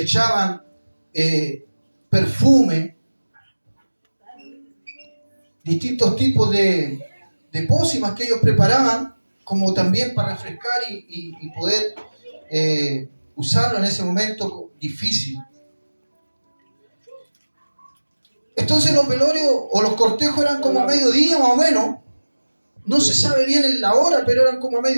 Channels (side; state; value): both; inverted; correlation -1.00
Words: echaban perfume, distintos tipos de pócimas que ellos preparaban, como también para refrescar y poder usarlo en ese momento difícil. Entonces los velorios o los cortejos eran como a mediodía más o menos. No se sabe bien en la hora, pero eran como a